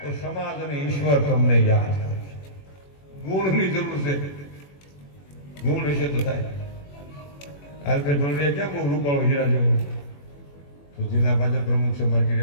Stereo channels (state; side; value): late; right; 21 ms